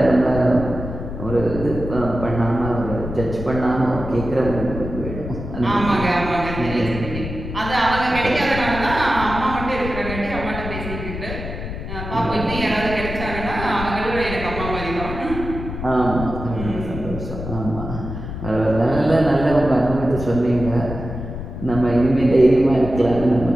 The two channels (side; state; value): left; noise; rumble, 7 dB below the sound